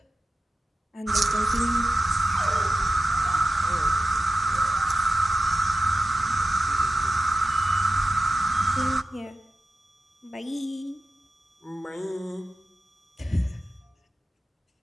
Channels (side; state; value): both; normal; correlation 0.92